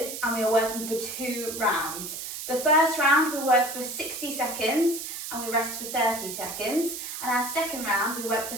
and we are working for 2 rounds. The first round we work for 60 seconds and we rest for 30 seconds. And our second round we work for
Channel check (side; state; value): right; noise; hiss, 7 dB below the sound